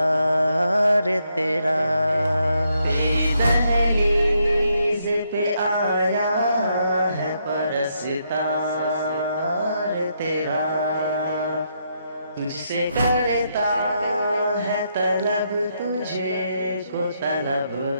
تیرا۔ تیری دہلیز پہ آیا ہے پرستار تیرا، تجھ سے کرتا ہے طلب، تجھے کو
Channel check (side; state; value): both; inverted; correlation -0.77